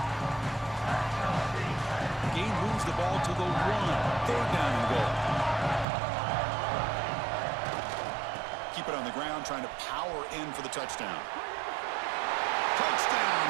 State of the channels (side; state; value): left; drops out; at 5.9 s